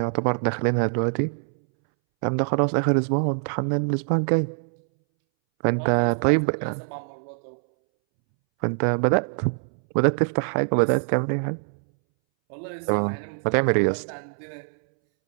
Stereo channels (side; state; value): left; silent; 63 dB below the other